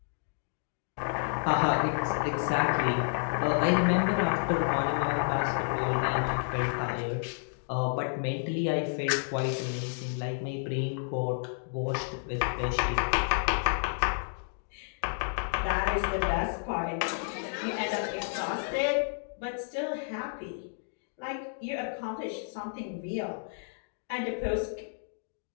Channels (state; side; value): silent; right; digital silence